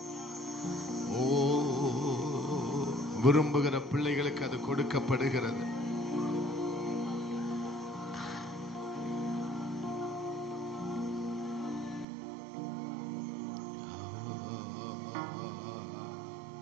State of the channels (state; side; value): drops out; left; at 12.1 s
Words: ஓ, விரும்புகிற பிள்ளைகளுக்கு அது கொடுக்கப்படுகிறது.